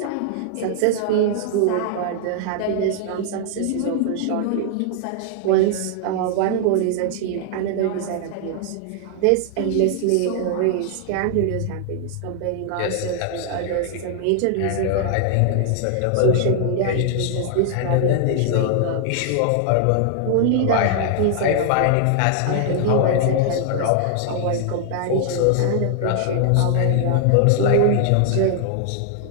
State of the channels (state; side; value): different; both; correlation 0.00